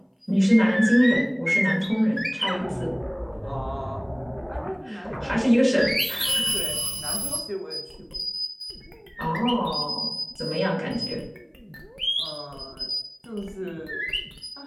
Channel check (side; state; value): both; identical; correlation 1.00